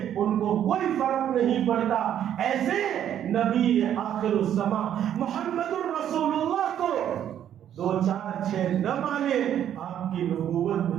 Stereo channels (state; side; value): quieter; left; 10.3 dB